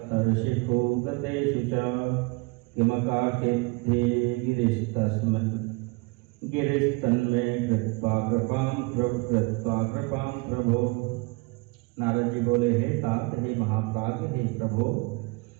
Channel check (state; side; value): quieter; left; 26.7 dB